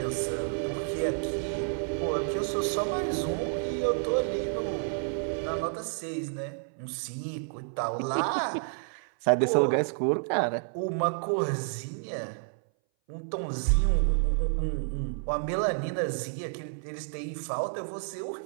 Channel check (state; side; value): silent; left; 58 dB below the other